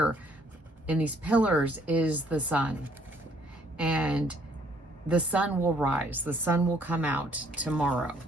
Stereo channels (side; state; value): both; normal; correlation 0.64